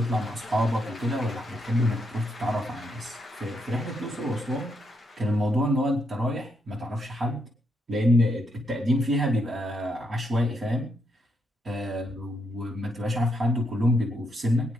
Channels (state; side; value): normal; both; correlation 0.78